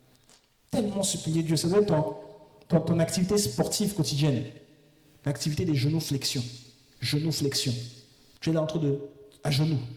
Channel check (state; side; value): identical; both; correlation 1.00